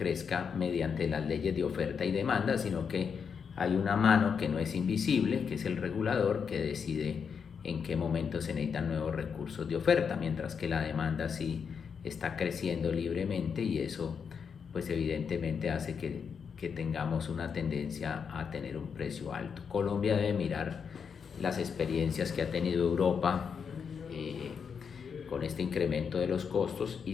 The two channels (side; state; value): right; quieter; 6.5 dB